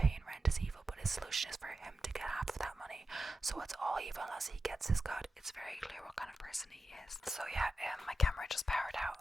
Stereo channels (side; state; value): both; normal; correlation 0.91